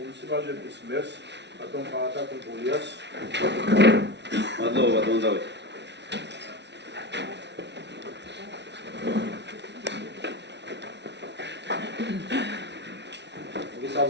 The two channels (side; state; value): left; late; 0.50 ms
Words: მერს ბატონ ყაატა კულტურიას. მადლობა ბატონ დავით.